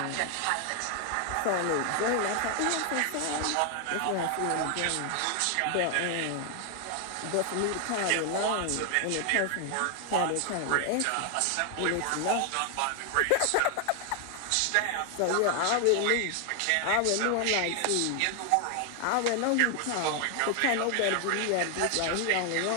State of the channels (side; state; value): both; different; correlation 0.00